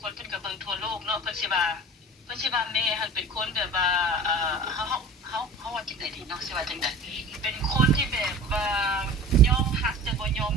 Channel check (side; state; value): both; normal; correlation 0.39